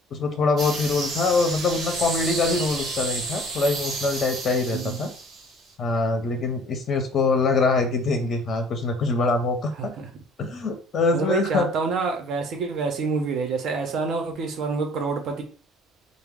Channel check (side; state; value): both; normal; correlation 0.52